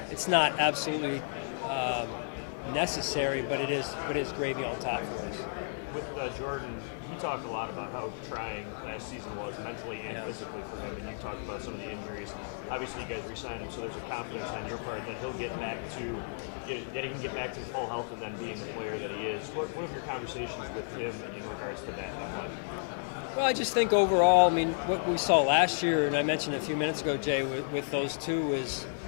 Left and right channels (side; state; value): right; silent; digital silence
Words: It's not absolutely necessary, but it is gravy on top for us. With Jordan, he talked a lot about how trying last season was mentally and physically for him, and you talked about some of the injuries. Obviously, you guys re-signed him, so there's a confidence on your part that he'll get back to, that he can get back to full health and then being the player that he is. What have your conversations with him in regards to that? Well, I just think overall, I mean, what we saw last year, and I mentioned a few minutes ago, Jay, with those two was,